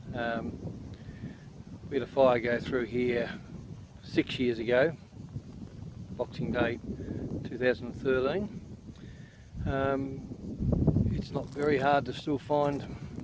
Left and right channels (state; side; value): identical; both; correlation 1.00